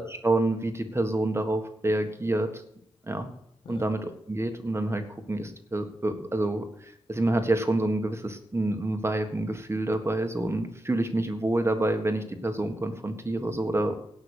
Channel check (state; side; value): normal; both; correlation 0.88